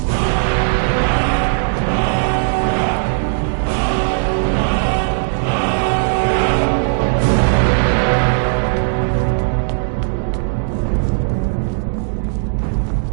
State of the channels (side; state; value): left; silent; digital silence